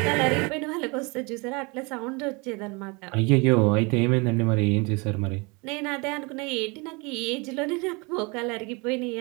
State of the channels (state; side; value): quieter; left; 28.5 dB